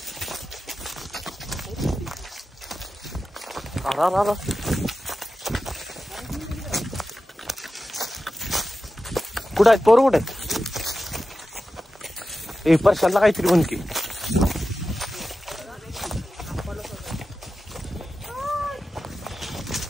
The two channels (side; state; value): both; normal; correlation 0.92